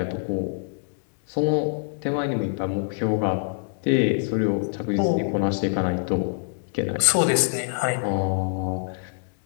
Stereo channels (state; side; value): silent; right; digital silence